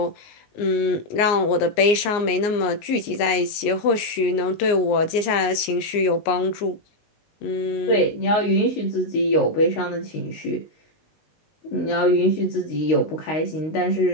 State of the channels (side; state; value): right; late; 19 ms